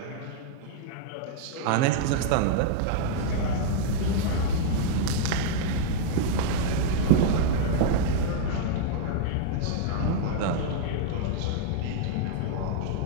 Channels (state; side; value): different; both; correlation -0.01